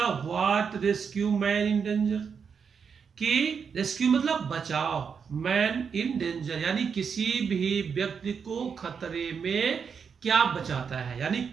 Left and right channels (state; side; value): quieter; left; 6.3 dB